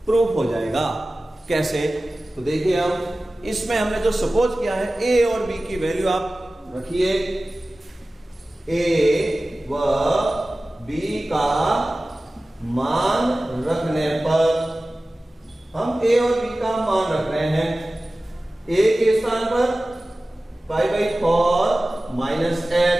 प्रूफ हो जाएगा। कैसे, तो देखिए अब इसमें हमने जो सपोज किया है A और B की वैल्यू आप रखिए, A व B का मान रखने पर हम a और b का मान रख रहे हैं। a के स्थान पर π/4 माइनस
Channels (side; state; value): both; normal; correlation 0.97